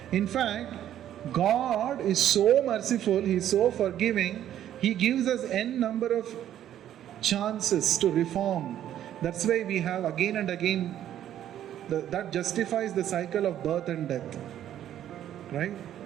In fact, God is so merciful, he is so forgiving, he gives us n number of chances to reform. That's why we have again and again, that justifies the cycle of birth and death. Right?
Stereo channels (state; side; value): quieter; left; 11.3 dB